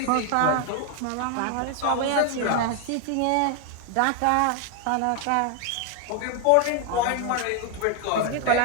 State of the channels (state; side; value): different; both; correlation 0.01